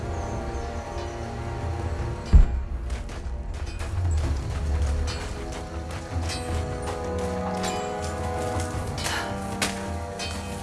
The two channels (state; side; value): identical; both; correlation 1.00